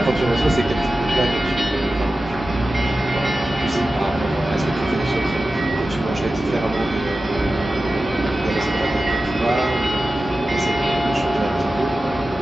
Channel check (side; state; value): both; normal; correlation 0.94